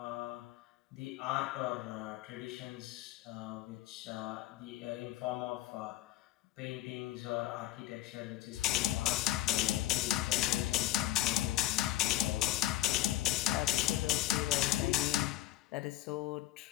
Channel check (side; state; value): right; quieter; 14.6 dB